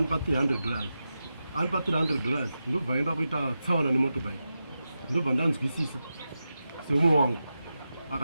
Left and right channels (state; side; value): inverted; both; correlation -0.91